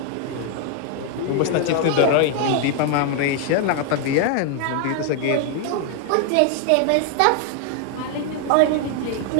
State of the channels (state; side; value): different; both; correlation 0.00